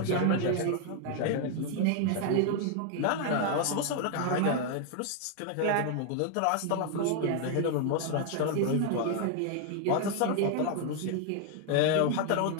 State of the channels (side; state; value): both; different; correlation 0.00